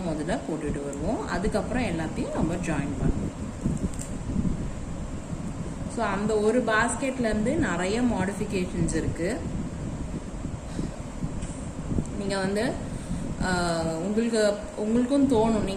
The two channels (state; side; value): identical; both; correlation 1.00